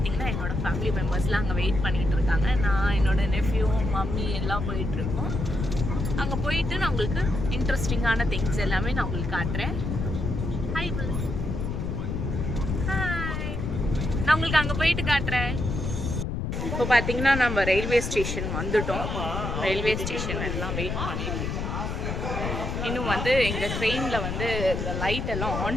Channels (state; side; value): noise; left; rumble, 3 dB below the sound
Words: என்னோடய ஃபேமிலி மெம்பர்ஸ்லாம் அங்கே வெயிட் பண்ணிகிட்டு இருக்காங்க. நான் என்னோடய நெஃப்யூ மம்மி எல்லாம் போயிட்டுருக்கோம். அங்கே போயிட்டு நான் உங்களுக்கு இன்ட்ரெஸ்டிங்கான திங்ஸ் எல்லாமே நான் உங்களுக்கு காட்டுறேன். ஹாய் ஹாய், நான் உங்களுக்கு அங்கே போயிட்டு காட்டுறேன். இப்போ பார்த்தீங்கன்னா நம்ம ரயில்வே ஸ்டேஷன் வந்துட்டோம். ரயில்வே ஸ்டேஷன் எல்லாம் வெயிட் பண்ணிட்டு இருக்கோம். இன்னும் வந்து எங்கள் ட்ரெயினில் வந்து இந்த லைட் எல்லாம்